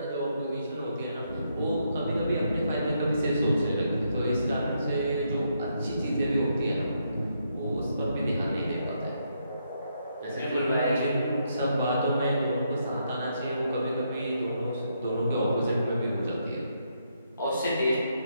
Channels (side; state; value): both; inverted; correlation -0.77